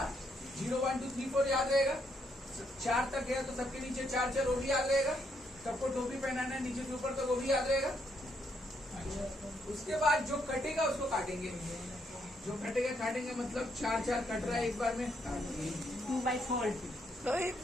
0, 1, 2, 3, 4 याद रहेगा। 4 तक गया तो सबके नीचे 4 4, वो भी याद रहेगा। सबको टोपी पहनाना है नीचे से ऊपर तक, वो भी याद रहेगा। उसके बाद जो कटेगा उसको काटेंगे, जो कटेगा काटेंगे, मतलब 4 4 कट रहा है एक बार में, 2/4,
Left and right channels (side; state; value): both; normal; correlation 0.75